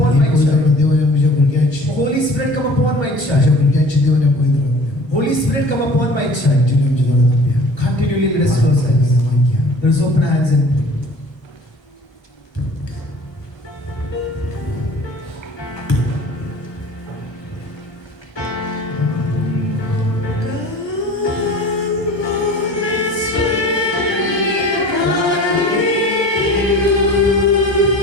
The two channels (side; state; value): right; late; 1.3 ms